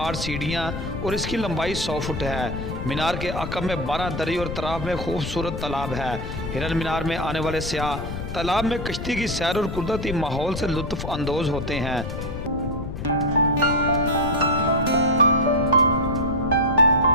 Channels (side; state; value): left; noise; rumble, 6 dB below the sound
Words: सीढ़ियाँ और इसकी लंबाई 100 फुट है। मीनार के अकब में 12 दरी और तराफ में खूबसूरत तालाब है। हिरन मीनार में आने वाले सयाह तालाब में कश्ती की सैर और कुदरती माहौल से लुत्फ़ अंदोज होते हैं।